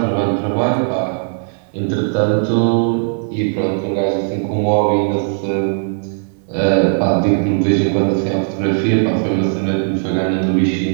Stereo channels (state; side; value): silent; left; digital silence